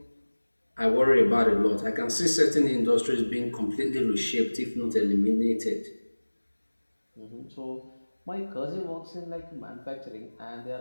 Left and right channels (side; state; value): both; inverted; correlation -1.00